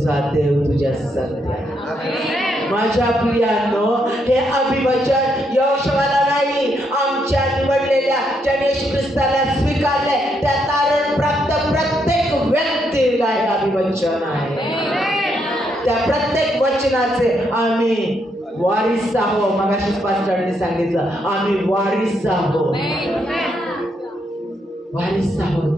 देव तुझ्या संगती आहे. माझ्या प्रियांनो, हे अभिवचन यहोशूआला नाही, आमच्या निवडलेल्या ज्याने येशू ख्रिस्ताला स्वीकारले त्या तारण प्राप्त प्रत्येक व्यक्तीला हे अभिवचन आहे. त्या प्रत्येक वचनाचे आम्ही वारिस आहोत. मगाशी पास्टरने सांगितलं, आम्ही वारिस आहोत, वारिस आहोत.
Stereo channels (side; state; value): both; normal; correlation 0.77